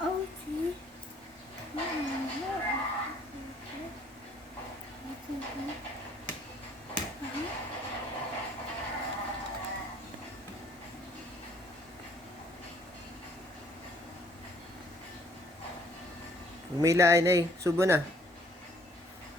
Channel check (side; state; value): both; normal; correlation 0.61